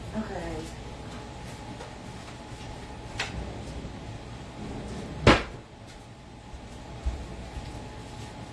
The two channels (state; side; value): identical; both; correlation 1.00